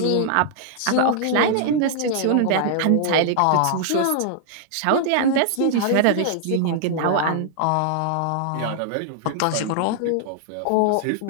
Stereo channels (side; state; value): both; different; correlation -0.01